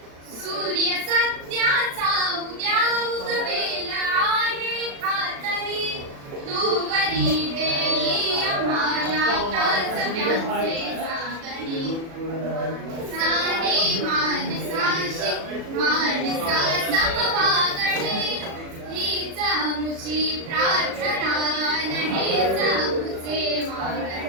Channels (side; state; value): left; late; 36 ms